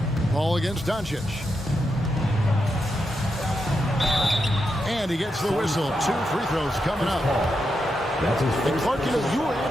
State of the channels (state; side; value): normal; both; correlation 0.85